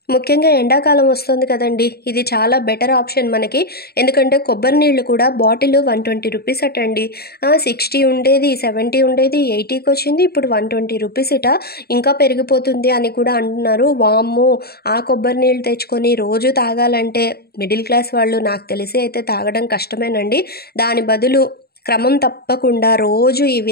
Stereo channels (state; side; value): late; right; 0.46 ms